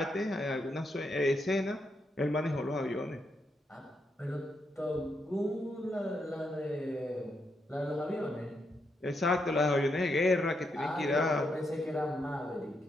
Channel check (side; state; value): both; normal; correlation 0.81